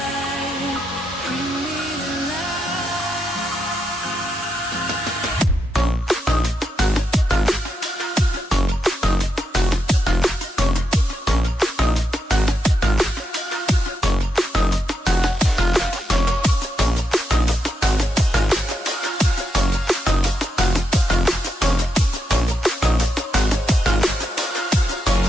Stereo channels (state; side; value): normal; both; correlation 0.83